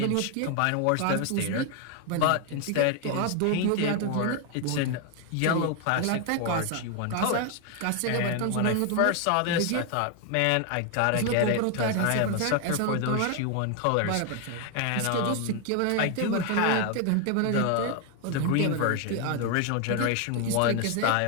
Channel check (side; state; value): both; different; correlation 0.01